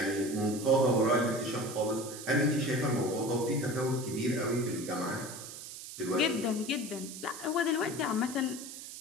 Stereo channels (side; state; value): right; noise; hiss, 11 dB below the sound